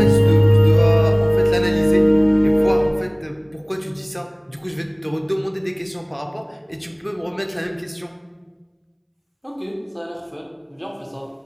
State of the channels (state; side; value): identical; both; correlation 1.00